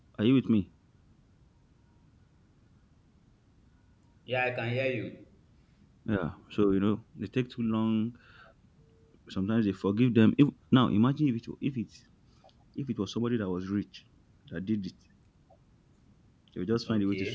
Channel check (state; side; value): identical; both; correlation 1.00